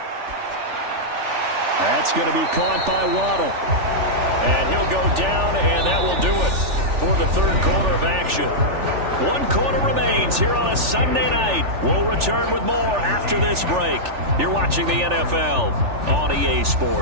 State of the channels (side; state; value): left; late; 3.4 ms